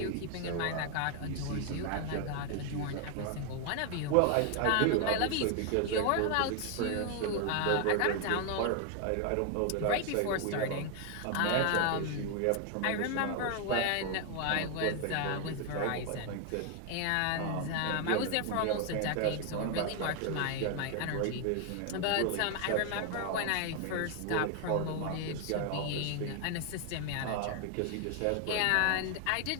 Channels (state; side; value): different; both; correlation 0.00